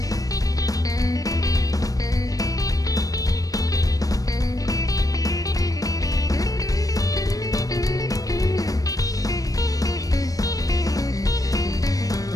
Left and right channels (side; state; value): right; late; 0.17 ms